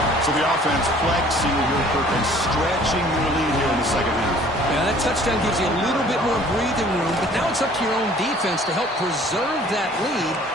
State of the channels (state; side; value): normal; both; correlation 0.53